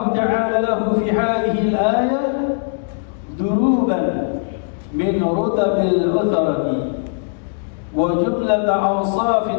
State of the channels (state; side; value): silent; right; digital silence